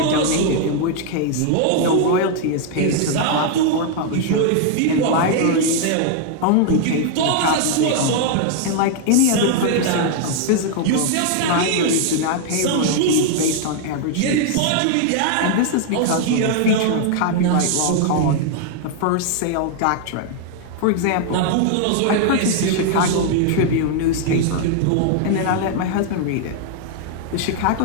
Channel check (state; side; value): different; both; correlation 0.00